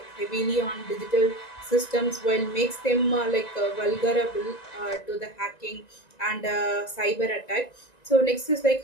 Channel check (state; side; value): late; right; 1.9 ms